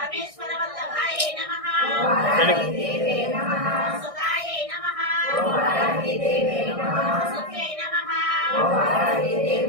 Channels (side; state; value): left; late; 1.6 ms